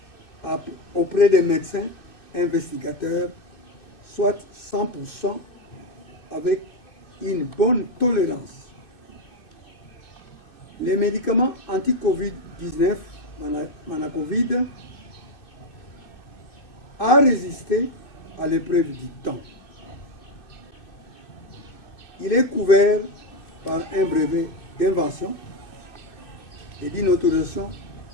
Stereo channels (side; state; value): right; late; 2.6 ms